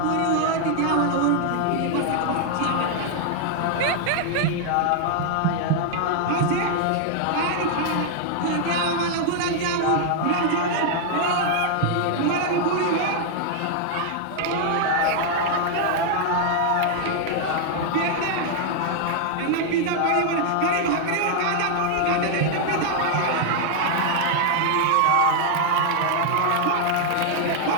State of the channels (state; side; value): different; both; correlation 0.00